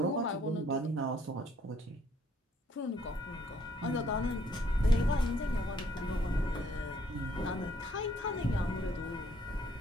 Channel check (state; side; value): normal; both; correlation 0.65